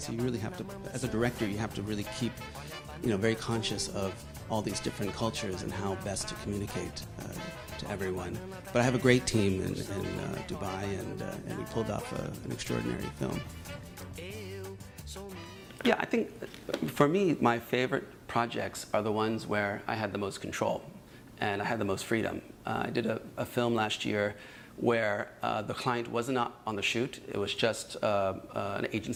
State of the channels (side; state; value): both; identical; correlation 1.00